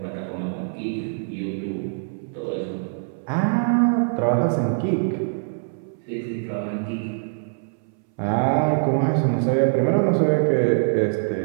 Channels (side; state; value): left; silent; 63 dB below the other